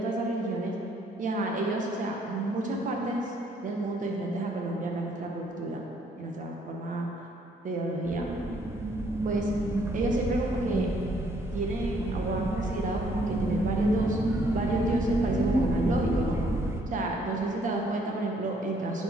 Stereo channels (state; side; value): normal; both; correlation 0.66